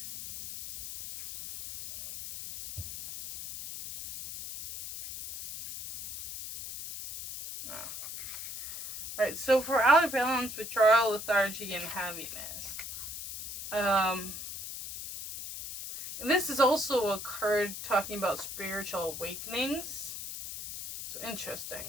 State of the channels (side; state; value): left; noise; hiss, 8 dB below the sound